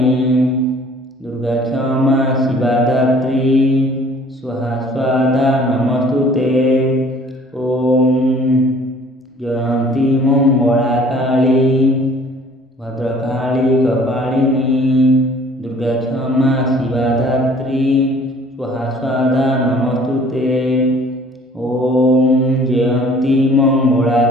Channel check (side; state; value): both; normal; correlation 0.53